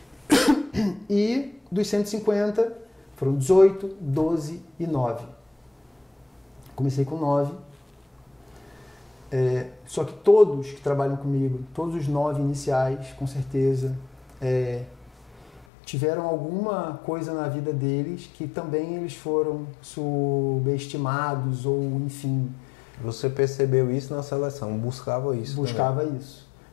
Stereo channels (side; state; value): right; drops out; at 15.7 s